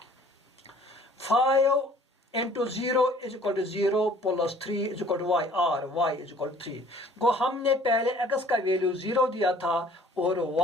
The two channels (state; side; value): normal; both; correlation 0.54